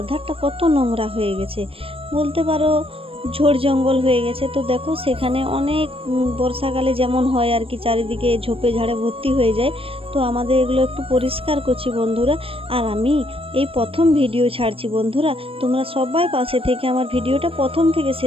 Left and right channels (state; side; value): late; left; 0.27 ms